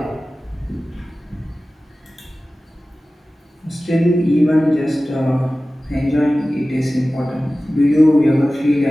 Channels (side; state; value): both; normal; correlation 0.96